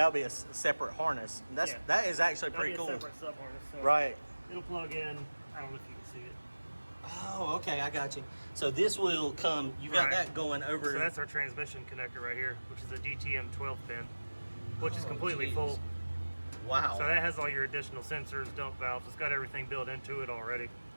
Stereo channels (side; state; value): both; inverted; correlation -1.00